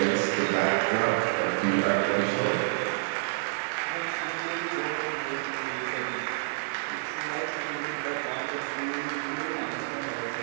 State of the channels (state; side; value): silent; left; 58 dB below the other